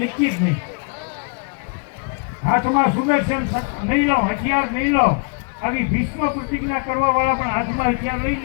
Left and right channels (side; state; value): right; quieter; 37.1 dB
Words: હાથમાં સુદર્શન નહીં લો, હથિયાર નહીં લો. આવી ભીષ્મ પ્રતિજ્ઞા કરવા વાળા પણ હાથમાં હથિયાર લઈ